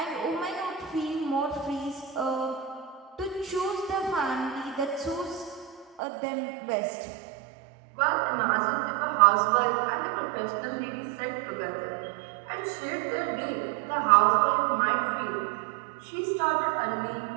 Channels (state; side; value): drops out; left; at 6.0 s